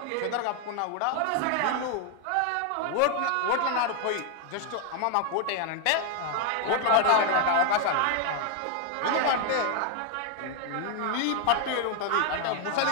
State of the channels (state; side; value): different; both; correlation 0.00